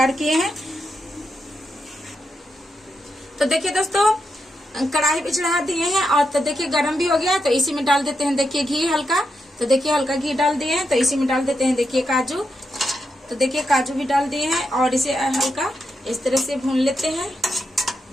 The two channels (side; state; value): both; normal; correlation 0.85